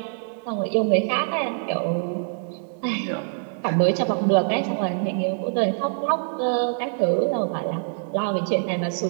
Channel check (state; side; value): silent; left; digital silence